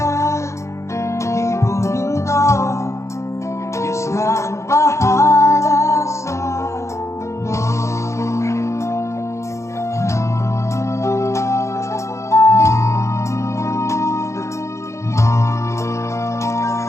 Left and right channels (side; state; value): right; late; 0.14 ms